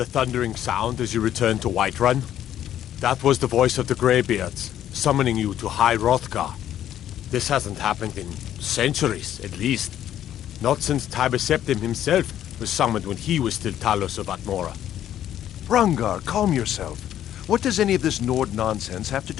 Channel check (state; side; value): quieter; right; 11.3 dB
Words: thundering sound as you returned to Whiterun? That was the voice of the Greybeards, summoning you to High Hrothgar. This hasn't happened in centuries, at least. Not since Tiber Septim himself was summoned when he was still Talos of Atmora. Rungar, calm yourself. What does any of this Nord nonsense have to